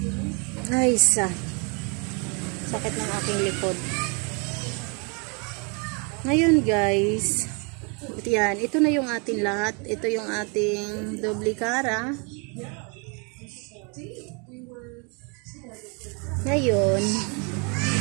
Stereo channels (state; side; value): quieter; left; 33.8 dB